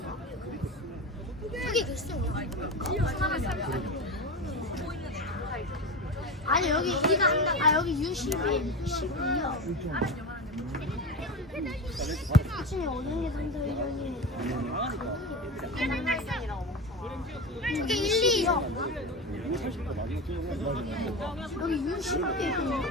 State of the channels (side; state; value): both; normal; correlation 0.23